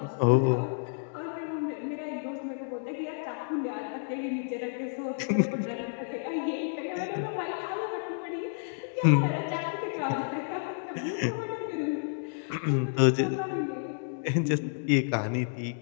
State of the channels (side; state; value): right; silent; digital silence